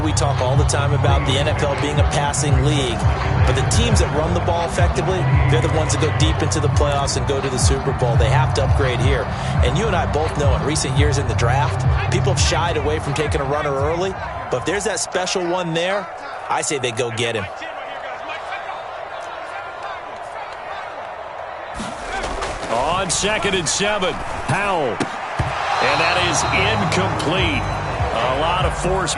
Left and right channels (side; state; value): both; identical; correlation 1.00